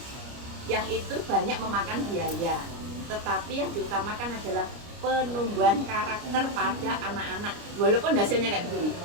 yang itu banyak memakan biaya. Tetapi yang diutamakan adalah penumbuhan karakter pada anak-anak walaupun hasilnya kayak begini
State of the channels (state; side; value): late; left; 29 ms